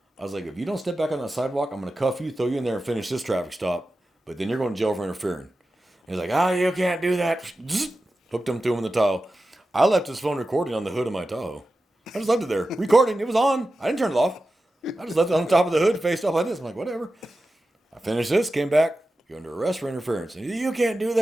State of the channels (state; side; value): normal; both; correlation 0.93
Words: I was like, if you don't step back on the sidewalk, I'm going to cuff you, throw you in there, and finish this traffic stop. But then you're going to jail for interfering. He's like, you can't do that. Hooked him, threw him in the Tahoe. I left his phone recording on the hood of my Tahoe. I just left it there. Recording. It was on. I didn't turn it off. I just left it on the top of the hood, faced up like this. I'm like, whatever. I finished this, came back. You're under arrest for interference. And you can't do